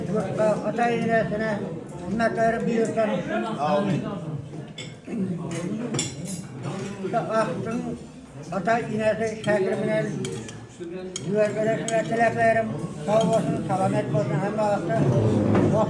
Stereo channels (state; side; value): identical; both; correlation 1.00